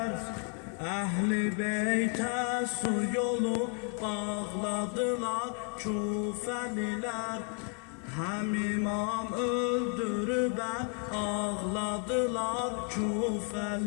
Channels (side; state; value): right; quieter; 37.8 dB